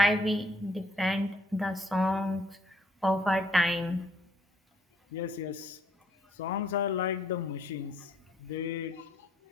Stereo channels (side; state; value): both; normal; correlation 0.65